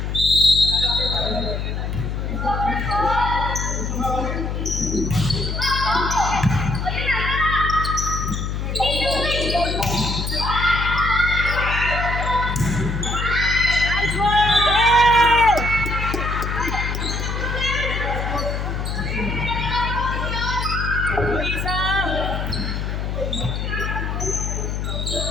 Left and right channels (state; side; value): noise; left; hum, 2 dB below the sound